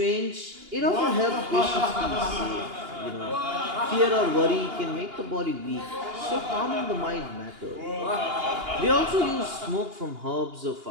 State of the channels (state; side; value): late; left; 2.8 ms